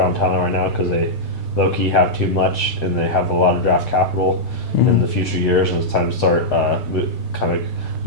talent right now because they low-key have too much, and they have a lot of draft capital in the future years, and it's time to start kind of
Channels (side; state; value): right; late; 6.6 ms